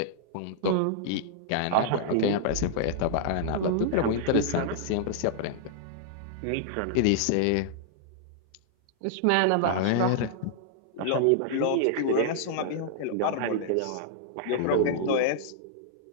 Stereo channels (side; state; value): both; different; correlation -0.01